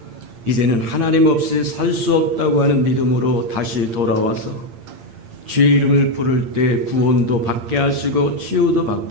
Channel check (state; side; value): late; left; 8.7 ms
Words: 이제는 하나님 없이 살 수 없다고 하는 믿음으로 다시 돌아와서 주의 이름을 부를 때 구원도 받게 하시고 치유도